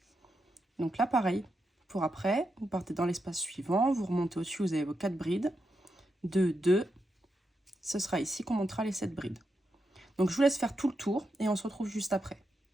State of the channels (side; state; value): both; normal; correlation 0.85